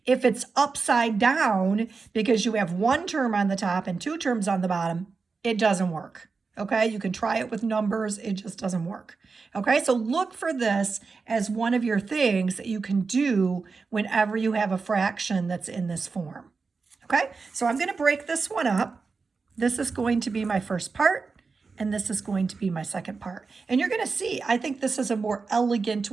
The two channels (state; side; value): quieter; left; 4.6 dB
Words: If it's upside down because you have 1 term on the top and 2 terms on the bottom, it doesn't work. Okay, you can try it with numbers, it just doesn't work. Okay, so look for this as one of your things that you can do whenever you have a fraction that's in this form. Okay, so I'm going to break this one up. This is going to be my first part, and this is going to be my second part. And you're going to see, I think this is a more elegant